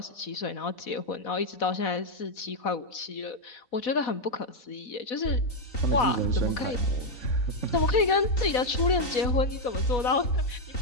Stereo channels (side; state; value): right; late; 4.1 ms